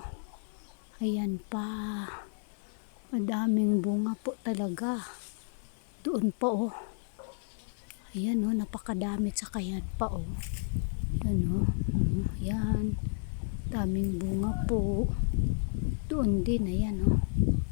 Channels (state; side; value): silent; right; digital silence